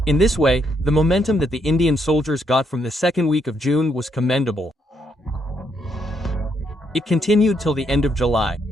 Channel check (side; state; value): both; normal; correlation 0.75